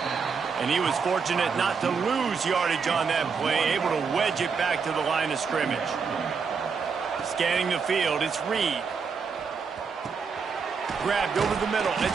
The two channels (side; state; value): left; quieter; 5.7 dB